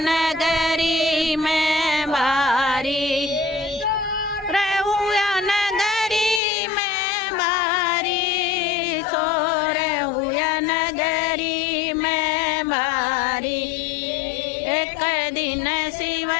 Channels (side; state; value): right; drops out; at 6.4 s